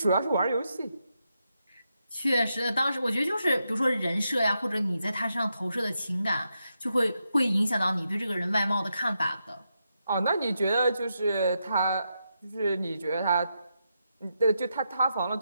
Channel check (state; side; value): inverted; both; correlation -0.84